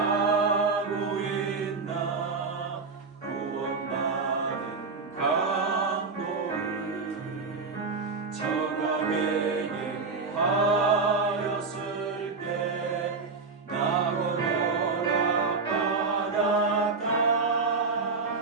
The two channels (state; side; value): quieter; left; 4.4 dB